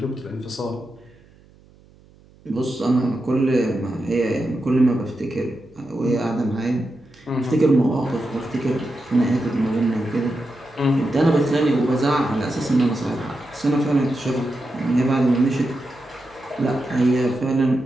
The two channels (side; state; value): right; noise; hum, 28 dB below the sound